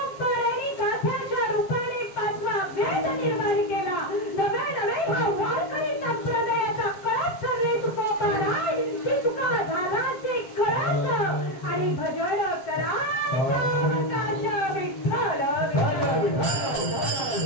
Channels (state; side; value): late; right; 7.4 ms